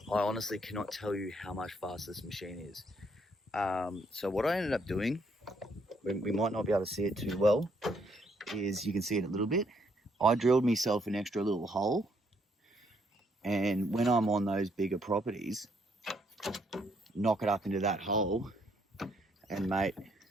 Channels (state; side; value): normal; both; correlation 0.71